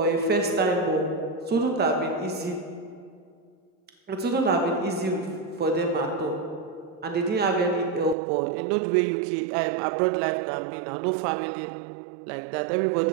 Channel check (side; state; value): left; drops out; at 8.2 s